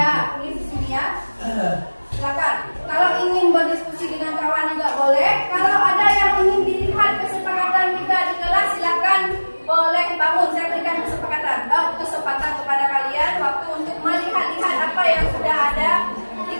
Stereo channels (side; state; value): both; inverted; correlation -1.00